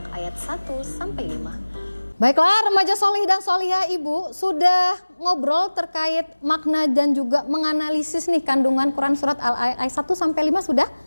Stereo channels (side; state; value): both; inverted; correlation -1.00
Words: ayat 1 sampai 5. Baiklah, remaja solih dan solihah Ibu sudah ngobrol terkait makna dan juga menganalisis nih kandungan Quran Surat Al-Ayat 1 sampai 5 sudah?